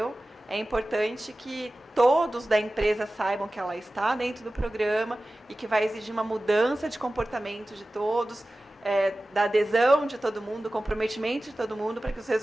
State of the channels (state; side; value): normal; both; correlation 0.96